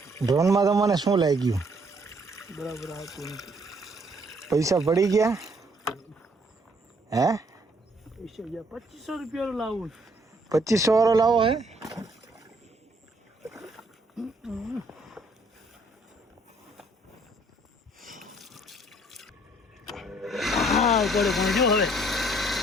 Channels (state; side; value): normal; both; correlation 0.65